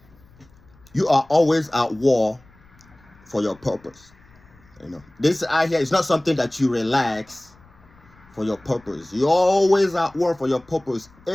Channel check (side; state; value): left; noise; rumble, 28 dB below the sound